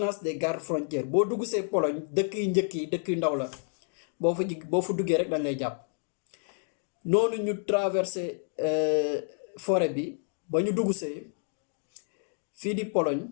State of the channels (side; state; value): right; silent; 58 dB below the other